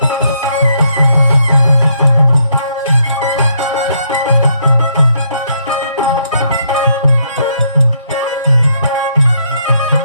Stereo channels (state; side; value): inverted; both; correlation -0.73